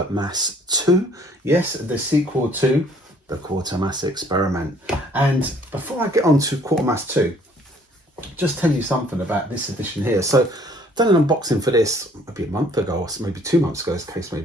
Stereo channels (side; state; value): both; normal; correlation 0.59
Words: 2. Yes, the sequel to the Quatermass Experiment. And before I get on to Quatermass 2, just tell you something about this edition here. So I've done an unboxing for this maybe a month ago, or maybe 2 months ago, as the case may